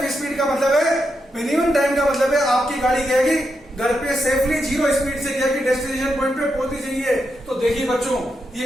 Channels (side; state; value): both; normal; correlation 0.84